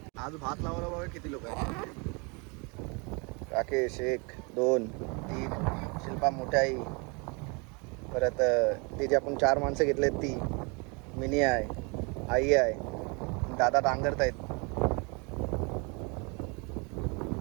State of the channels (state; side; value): quieter; left; 31.3 dB